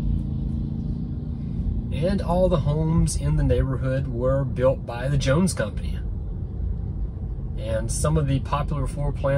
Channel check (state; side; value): identical; both; correlation 1.00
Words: And all the homes in the neighborhood were built by the Jones Company. And some of the popular floor